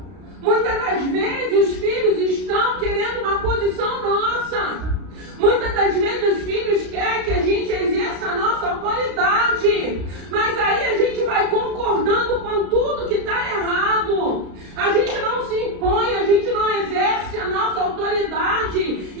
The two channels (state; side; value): late; left; 32 ms